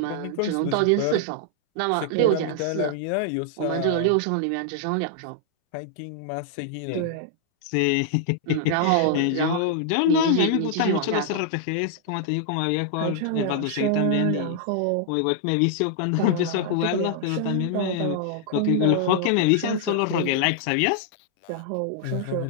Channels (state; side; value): different; both; correlation -0.01